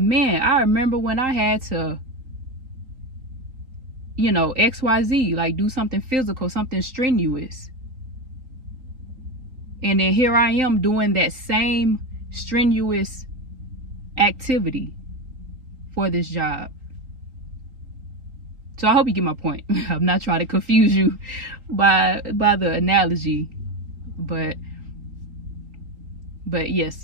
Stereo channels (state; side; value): late; left; 3.8 ms